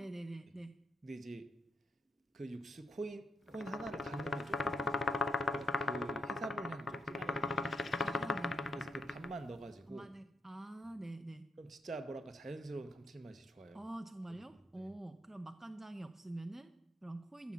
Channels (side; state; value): both; normal; correlation 0.78